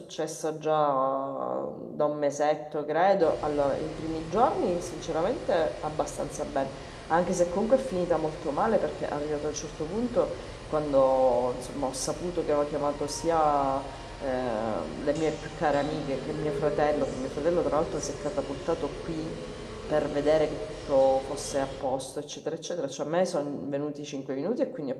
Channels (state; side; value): identical; both; correlation 1.00